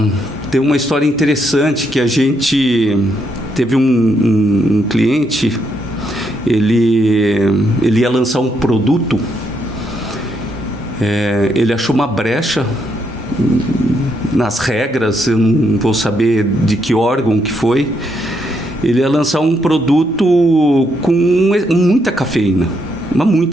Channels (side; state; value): both; normal; correlation 0.77